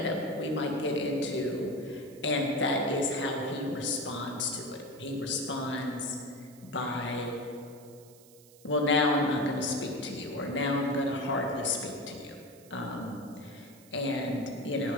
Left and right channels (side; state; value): right; noise; hiss, 24 dB below the sound